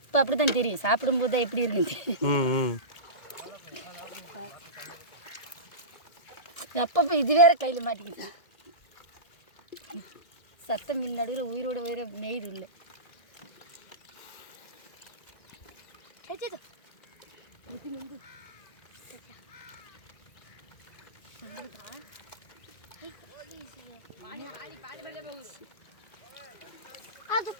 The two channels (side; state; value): right; late; 2.1 ms